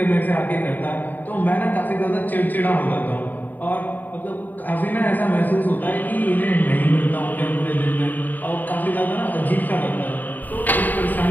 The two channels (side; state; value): right; late; 0.087 ms